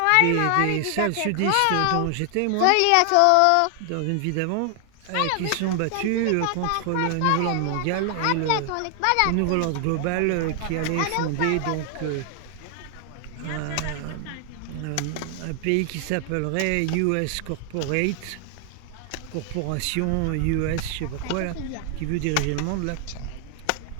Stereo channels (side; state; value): both; different; correlation 0.00